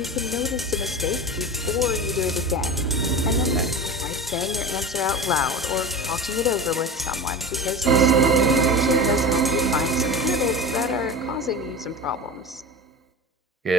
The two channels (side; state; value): both; normal; correlation 0.30